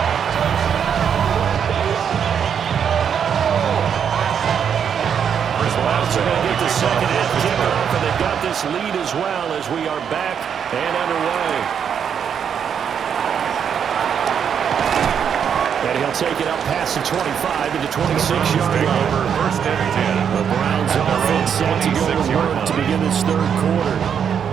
Lead as well as we are back and underway. And he'll take it up past the 25 to the 26-yard line. First and 10. The Browns offense set to go to work to begin this third quarter.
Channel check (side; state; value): left; quieter; 7.8 dB